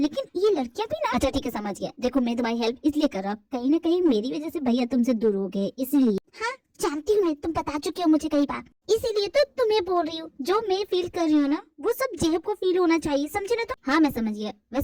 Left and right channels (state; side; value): identical; both; correlation 1.00